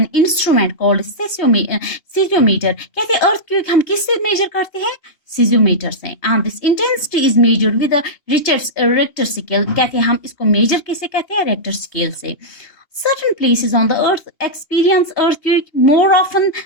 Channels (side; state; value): right; late; 2.8 ms